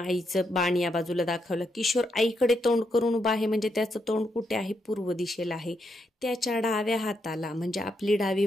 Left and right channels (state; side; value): normal; both; correlation 0.80